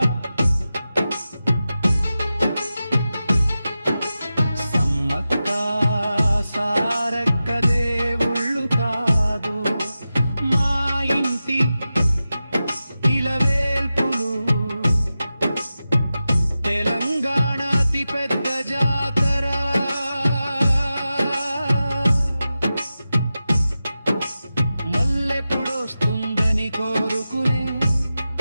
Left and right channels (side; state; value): both; inverted; correlation -0.93